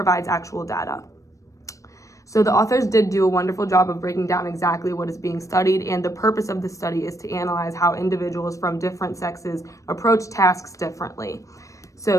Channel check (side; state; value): right; late; 0.16 ms